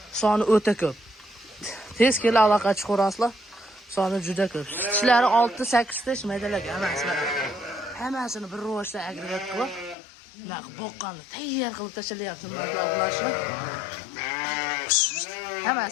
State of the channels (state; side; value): drops out; right; at 10.0 s